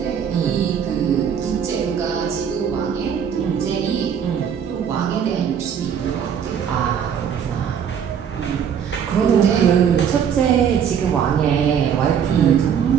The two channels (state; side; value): quieter; left; 8.0 dB